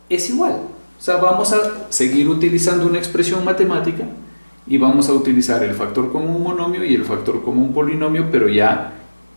es igual. O sea, vamos a seguir utilizando una expresión matemática y vamos a utilizar el factor común monomio y el factor común polinomio, pero ya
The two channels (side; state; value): both; inverted; correlation -1.00